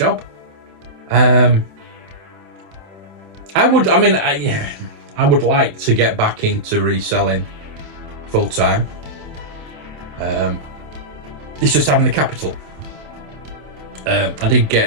I would like to get back into reselling full time. It's just having the capital. I did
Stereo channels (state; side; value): late; left; 27 ms